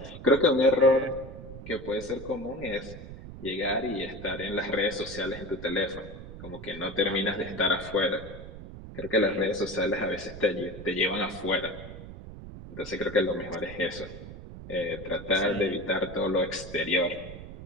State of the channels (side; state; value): right; noise; rumble, 13 dB below the sound